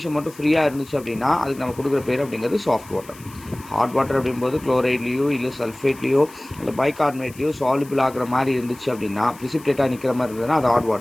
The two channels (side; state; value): left; noise; hiss, 21 dB below the sound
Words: மட்டும் ஃப்ரீயாக இருந்துச்சு அப்படின்னா அதுக்கு நம்ம கொடுக்குற பேர் அப்படிங்கிறது சாஃப்ட் வாட்டர். ஹாட் வாட்டர் அப்படிங்கும்போது குளோரைட்லேயோ இல்லை சல்ஃபேட்லேயோ இல்லை பைகார்பனேட்லேயோ சால்யூபிள் ஆகிற மாதிரி இருந்துச்சு அப்படின்னா, ப்ரிசிபிடேட்டாக நிற்கிற மாதிரி இருந்ததுன்னா அது ஹாட்